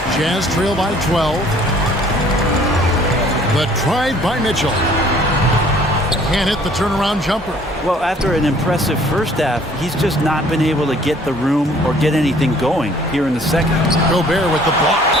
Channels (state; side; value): normal; both; correlation 0.56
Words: Jazz trail by 12. The drive by Mitchell. Can't hit the turnaround jumper. Well, after an impressive first half, he's just not been able to get the room or get anything going here in the second. Gobert with the block.